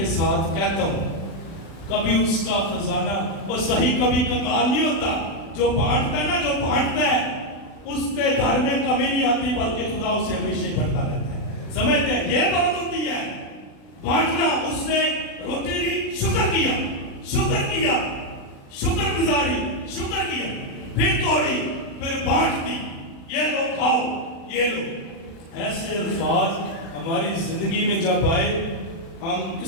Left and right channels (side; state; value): right; late; 36 ms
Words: ساتھ کہتا ہوں، کبھی اس کا خزانہ اور صحیح کبھی کنگال نہیں ہوتا. جو بانٹتا ہے نا، جو بانٹتا ہے، اس کے گھر میں کمی نہیں آتی، بلکہ خدا اسے ہمیشہ بڑھتا رہتا ہے. سمجھتے ہیں؟ یہ بات ہوتی ہے بانٹنا. اس نے روٹی لی، شکر کیا، شکر گزاری، شکر کیا، پھر توڑی، پھر بانٹ دی. یہ لو کھاؤ، یہ لو. ایسے الفاظ ہماری زندگی میں جب آئے، ہم